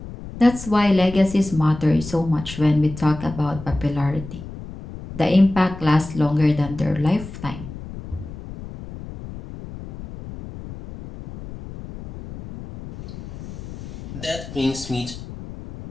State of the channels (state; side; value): noise; left; rumble, 12 dB below the sound